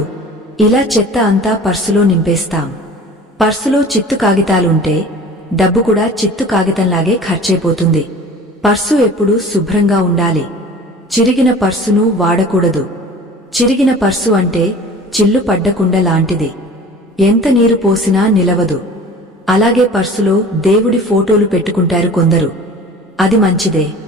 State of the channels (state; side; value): normal; both; correlation 0.42